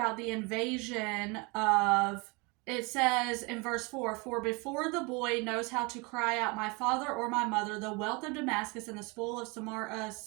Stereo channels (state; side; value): quieter; left; 28.6 dB